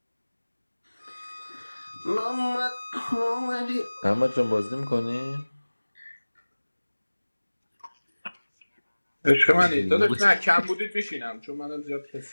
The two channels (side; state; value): both; inverted; correlation -1.00